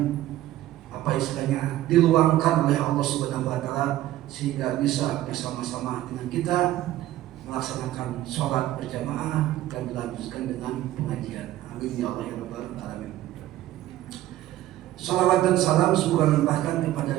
apa istilahnya diluangkan oleh Allah Subhanahu wa taala sehingga bisa bersama-sama dengan kita melaksanakan sholat berjamaah dan dilanjutkan dengan pengajian. Amin ya Allah ya rabbal alamin. Salawat dan salam semoga limpahkan kepada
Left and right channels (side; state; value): left; quieter; 14.5 dB